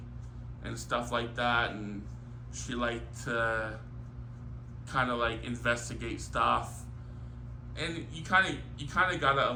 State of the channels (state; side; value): identical; both; correlation 1.00